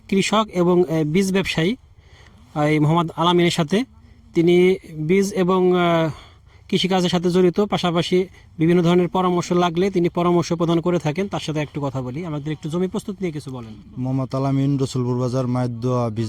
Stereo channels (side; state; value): both; identical; correlation 1.00